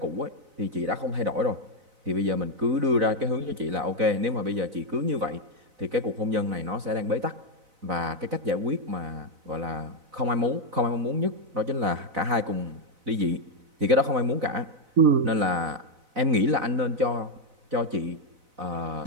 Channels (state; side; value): late; left; 4.0 ms